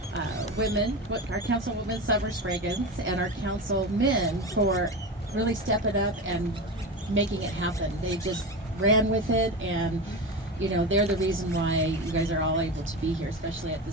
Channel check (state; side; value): normal; both; correlation 0.23